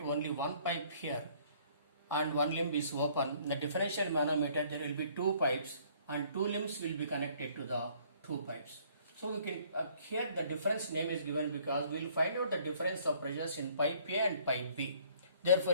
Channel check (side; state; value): both; inverted; correlation -0.59